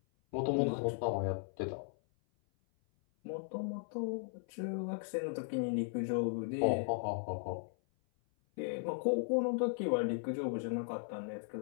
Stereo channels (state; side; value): silent; right; 53 dB below the other